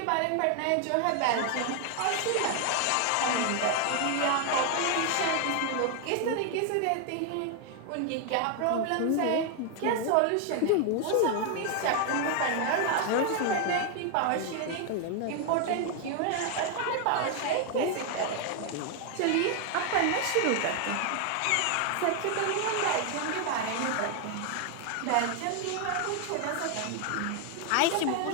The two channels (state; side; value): different; both; correlation 0.00